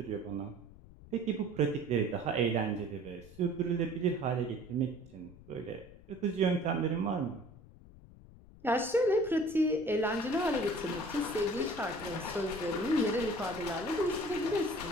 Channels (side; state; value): left; noise; rumble, 20 dB below the sound